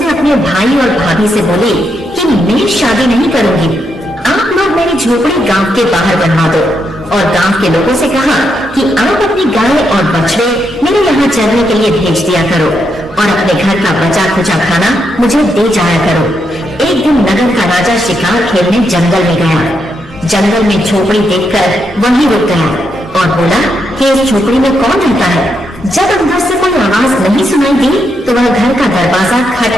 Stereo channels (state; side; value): normal; both; correlation 0.81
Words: अपने भाई और भाभी से बोली कि मैं शादी नहीं करूंगी, आप लोग मेरी झोपड़ी गांव के बाहर बनवा दो। और गांव के लोगों से कहा कि आप अपनी गाय और बछड़े मेरे यहाँ चरने के लिए भेज दिया करो और अपने घर का बचा खुचा खाना मुझे दे जाया करो। एक दिन नगर का राजा शिकार खेलने जंगल में गया। जंगल में झोपड़ी देखकर वहीं रुक गया और बोला कि इस झोपड़ी में कौन रहता है। जब अंदर से कोई आवाज नहीं सुनाई दी तो वह घर का दरवाजा